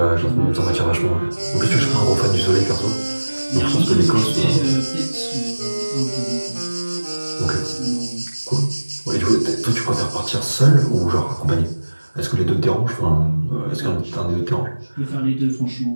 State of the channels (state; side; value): inverted; both; correlation -1.00